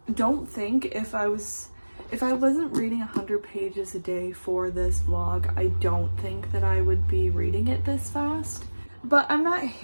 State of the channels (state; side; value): inverted; both; correlation -1.00